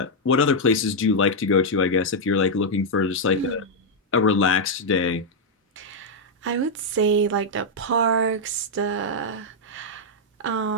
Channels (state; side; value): normal; both; correlation -0.03